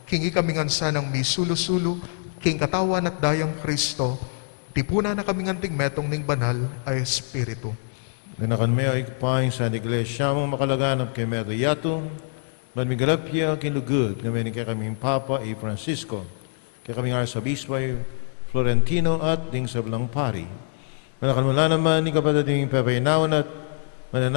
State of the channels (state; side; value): silent; right; 62 dB below the other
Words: kingi kaming ansanang mi sulo-sulo, king katawan at dayang Kristo, tipuna na kaming anting metong ning banal ay Espiritu. Nanakan may ikpaing sa iglesia mong makalaganap kay Medo Yato, man migalapya kinugod kami ni kay kaming Papa y Francisco, kay kaming Arsabispo Florentino at ding sablang pari. Nanakan mula naman ni kapatid Pepaynawan at